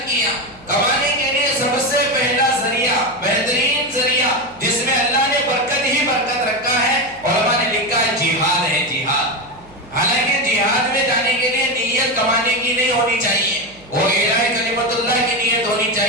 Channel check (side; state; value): right; noise; hum, 25 dB below the sound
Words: کیا کمانے کے لیے سب سے پہلا ذریعہ، بہترین ذریعہ جس میں اللہ نے برکت ہی برکت رکھا ہے، علماء نے لکھا ہے جہاد ہے، جہاد۔ حالانکہ جہاد میں جانے کے لیے نیت کمانے کی نہیں ہونی چاہیے، وہ اعلاء کلمت اللہ کی نیت ہونی